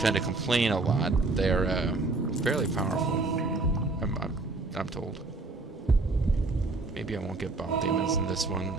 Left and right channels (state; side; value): quieter; left; 3.3 dB